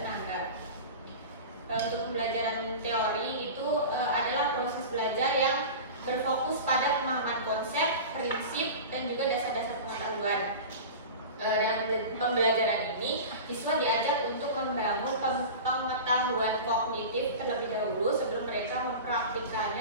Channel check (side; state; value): both; inverted; correlation -0.32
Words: Untuk pembelajaran teori itu adalah proses belajar yang berfokus pada pemahaman konsep, prinsip, dan juga dasar-dasar pengetahuan. Dengan pembelajaran ini, siswa diajak untuk membangun pengetahuan kognitif terlebih dahulu sebelum mereka